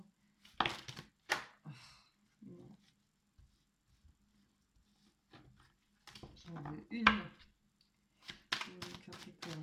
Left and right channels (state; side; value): identical; both; correlation 1.00